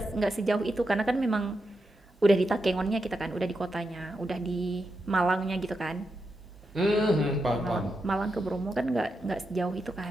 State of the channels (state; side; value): normal; both; correlation 0.86